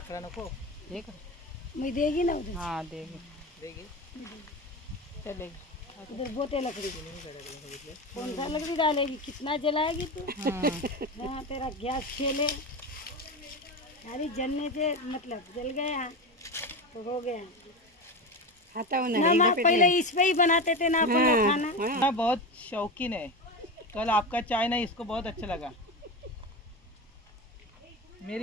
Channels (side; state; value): both; normal; correlation 0.21